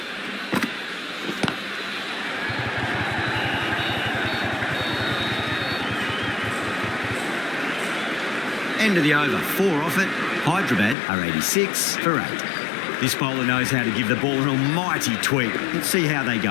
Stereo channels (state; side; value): drops out; right; at 11.0 s